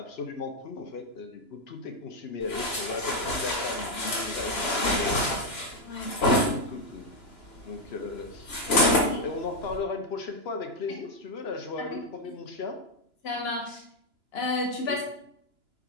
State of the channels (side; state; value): right; late; 2.9 ms